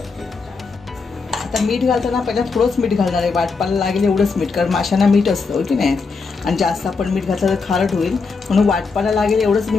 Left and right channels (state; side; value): quieter; right; 4.6 dB